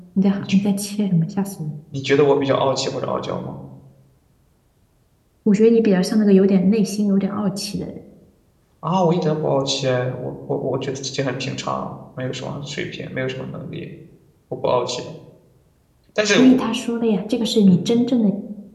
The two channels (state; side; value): identical; both; correlation 1.00